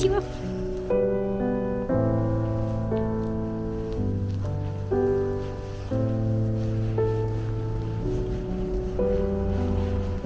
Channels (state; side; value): identical; both; correlation 1.00